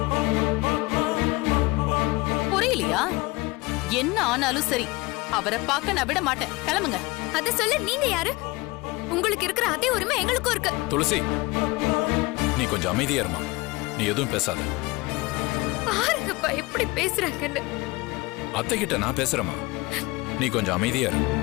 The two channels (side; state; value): right; quieter; 23.0 dB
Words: புரியலையா? என்ன ஆனாலும் சரி, அவரை பார்க்க நான் விட மாட்டேன். கிளம்புங்க. அத சொல்ல நீங்க யாரு? உங்களுக்கு இருக்கிற அதே உரிமை எங்களுக்கும் இருக்கு. துளசி, நீ கொஞ்சம் அமைதியா இருமா. நீ எதுவும் பேசாத. பாருங்கப்பா எப்படி பேசுறாங்கன்னு. அத்தை கிட்ட நான் பேசுறேமா. நீ கொஞ்சம் அமைதியா இரு.